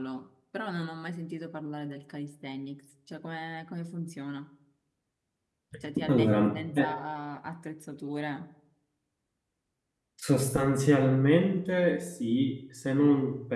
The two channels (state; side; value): identical; both; correlation 1.00